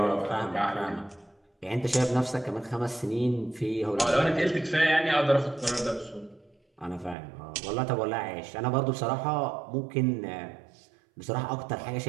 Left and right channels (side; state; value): left; drops out; at 7.2 s